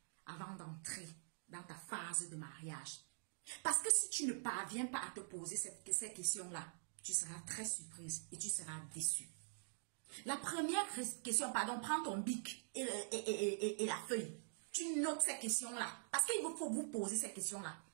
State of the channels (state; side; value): silent; left; digital silence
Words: avant d'entrer dans ta phase de mariage. Parce que si tu ne parviens pas à te poser ces questions-là, tu seras très surprise et tu seras déçue. La première question, pardon, prends ton bic et la feuille. Tu notes ces questions-là. Parce qu'il faut vous poser ces questions-là.